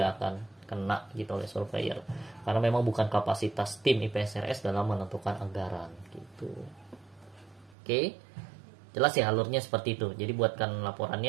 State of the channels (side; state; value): left; drops out; at 7.8 s